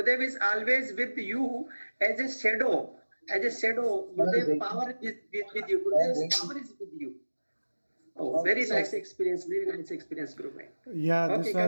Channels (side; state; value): both; inverted; correlation -1.00